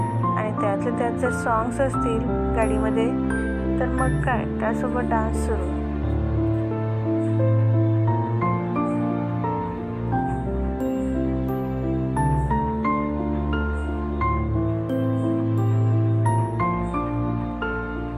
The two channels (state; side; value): identical; both; correlation 1.00